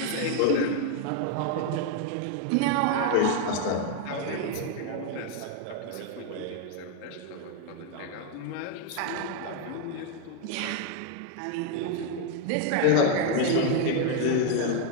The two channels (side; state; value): both; different; correlation 0.01